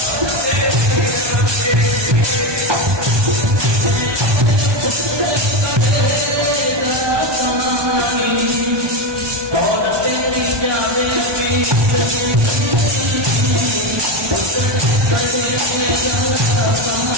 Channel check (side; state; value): left; late; 1.2 ms